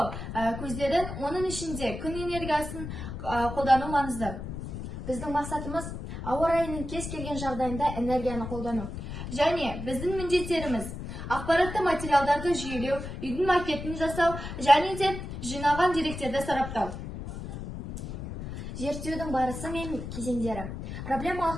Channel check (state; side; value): noise; left; rumble, 8 dB below the sound